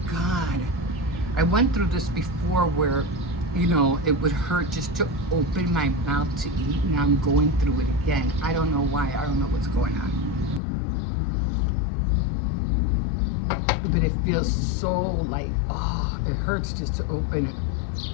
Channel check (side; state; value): right; drops out; at 10.6 s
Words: God. I went through this before where, it would hurt just to open my mouth to eat. Now I'm going through it again. I don't know why. I don't know what's going on. But it feels so like, oh, it hurts just to open